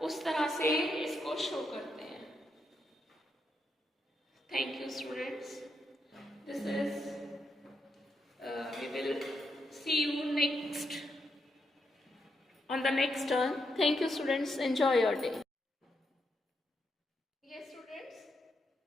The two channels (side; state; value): both; normal; correlation 0.82